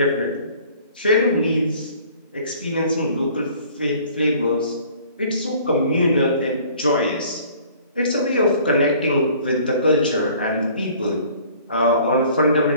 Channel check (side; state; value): both; inverted; correlation -0.52